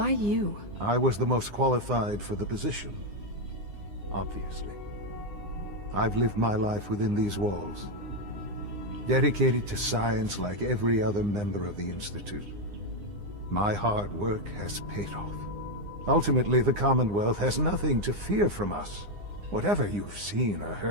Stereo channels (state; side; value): late; left; 9.8 ms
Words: you? I was the most qualified for the position, obviously. I've lived my life within these walls, dedicated to science like every other member of the Institute. My hard work has paid off. Ultimately, the Commonwealth has nothing to fear from us. Whatever you've seen or